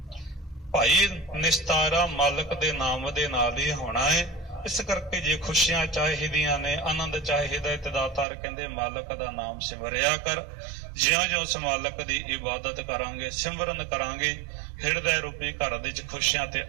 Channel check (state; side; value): drops out; left; at 8.2 s